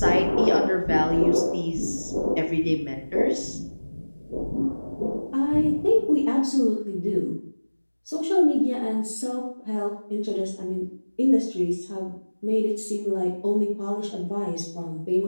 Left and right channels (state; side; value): inverted; both; correlation -1.00